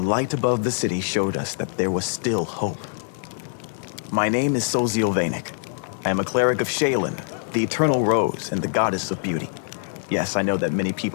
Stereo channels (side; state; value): right; silent; digital silence